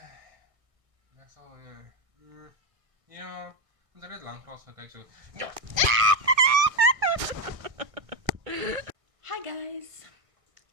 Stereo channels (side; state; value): left; late; 1.6 ms